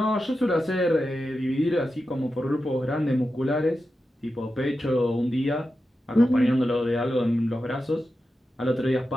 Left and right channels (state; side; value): normal; both; correlation 0.90